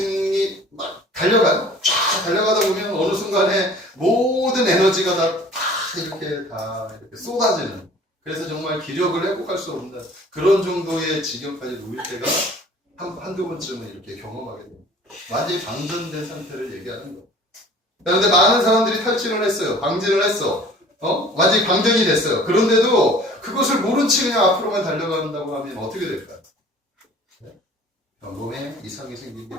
막 달려가요. 쫙 달려가다 보면 어느 순간에 모든 에너지가 다 이렇게 쏟아지는, 그래서 정말 기력을 회복할 수 없는 그런 정도의 지경까지 놓일 때가 한두 번쯤은 이렇게 경험하게 됩니다. 완전히 방전된 상태를 얘기하는 거예요. 그런데 많은 사람들이 탈진을 했어요. 방진을 했어. 완전히 방전이 됐어요. 그런데도 그것을 모른 채 그냥 앞으로만 달려간다고 하면 어떻게 될까요? 몸에 이상이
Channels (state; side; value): normal; both; correlation 0.48